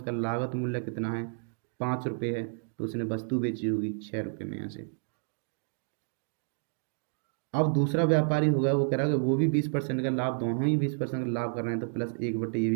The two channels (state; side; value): silent; left; digital silence